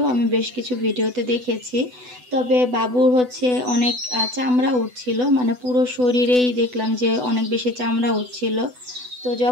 আমি বেশ কিছু ভিডিওতে দেখেছি। তবে বাবুর হচ্ছে অনেক চামড়া উঠছিল, মানে পুরো শরীরেই দেখলাম যে অনেক বেশি চামড়া উঠছিল। তো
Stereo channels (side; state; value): left; late; 8.0 ms